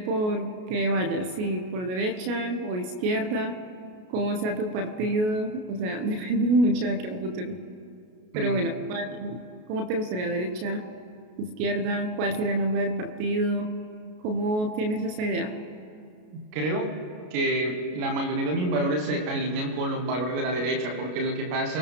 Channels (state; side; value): late; left; 33 ms